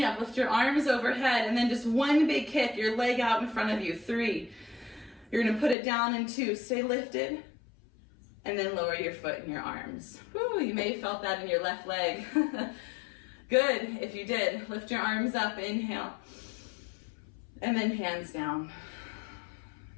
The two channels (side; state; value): right; drops out; at 5.8 s